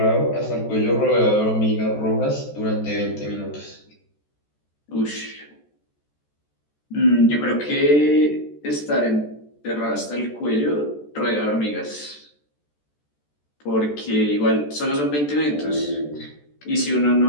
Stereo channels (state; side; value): late; right; 14 ms